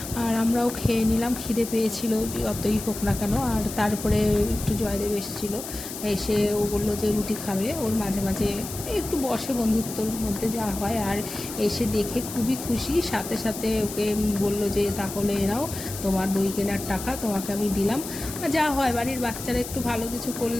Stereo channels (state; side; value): noise; left; hiss, 10 dB below the sound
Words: আর আমরাও খেয়ে নিলাম, খিদে পেয়েছিল যতই হোক না কেন। আর তারপরে একটু জয়দেব এসেছিলো, এসে ও বললো যে রুটি খাবে, ওর মাঝে মাঝে একটু বসে, বন্ধুত্বর মধ্যে যা হয়। আর এসে দেখে খুবই খুশি, সাথে সাথে ওকে বললো যে তাহলে এরাও তোমার বই কেনার টাকা তোমাকে আমি দিলাম। যা হয়, বাড়ির বাচ্চারা একটু ভালো কিছু